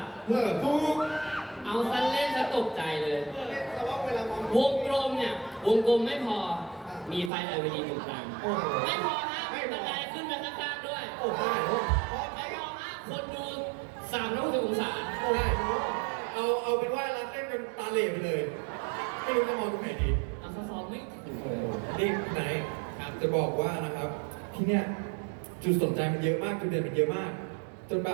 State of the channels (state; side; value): drops out; left; at 7.3 s